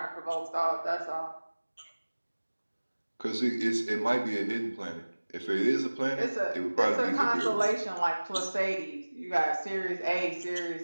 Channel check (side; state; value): both; inverted; correlation -1.00